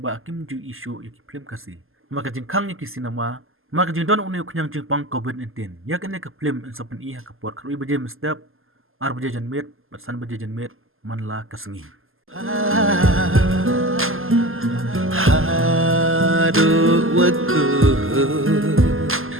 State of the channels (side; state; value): left; late; 0.60 ms